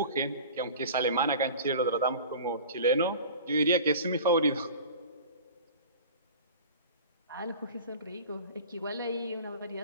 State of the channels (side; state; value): both; inverted; correlation -0.39